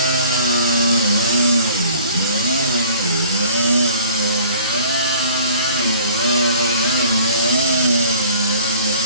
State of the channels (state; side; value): inverted; both; correlation -0.49